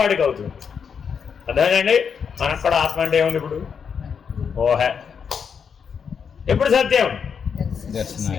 అవుతుంది. అర్థమేనండి? మనకు కూడా ఆత్మ అంటే ఏముంది? ఇప్పుడు ఊహ. ఎప్పుడు సత్యం?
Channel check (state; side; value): quieter; right; 6.7 dB